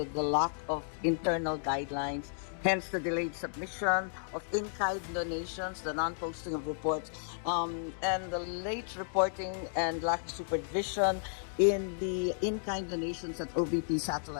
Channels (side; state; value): right; silent; digital silence